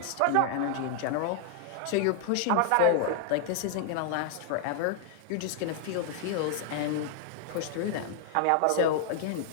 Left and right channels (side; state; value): both; different; correlation 0.00